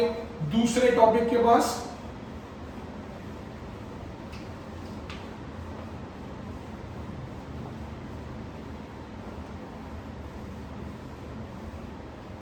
दूसरे टॉपिक के पास।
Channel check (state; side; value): identical; both; correlation 1.00